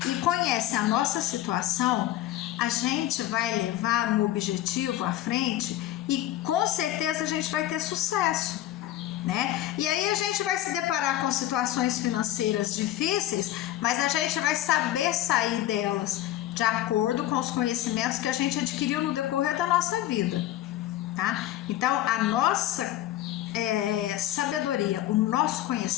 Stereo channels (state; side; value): quieter; right; 13.5 dB